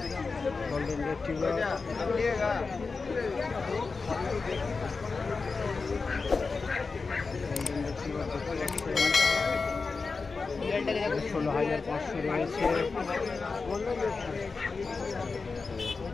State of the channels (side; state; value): right; quieter; 4.4 dB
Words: গোল্ডেন রিট্রিভার 16,500 রয়েছে।